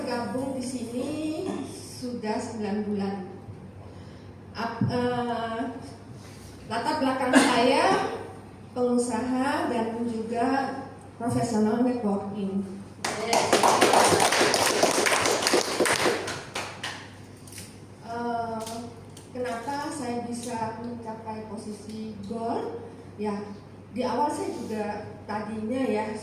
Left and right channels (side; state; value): both; identical; correlation 1.00